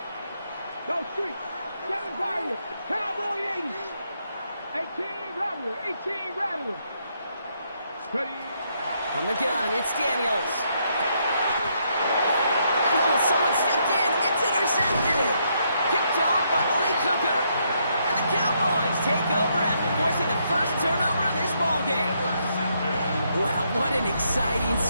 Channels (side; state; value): both; inverted; correlation -0.75